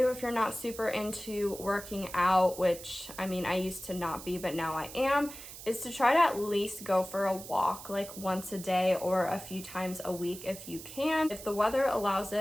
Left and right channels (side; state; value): right; noise; hiss, 13 dB below the sound